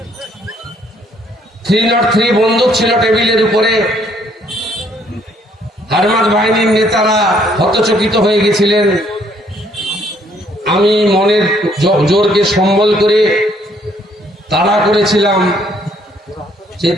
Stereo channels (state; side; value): normal; both; correlation 0.66